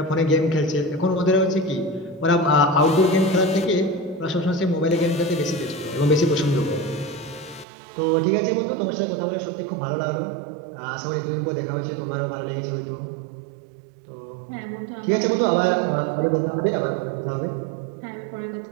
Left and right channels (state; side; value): drops out; left; at 7.7 s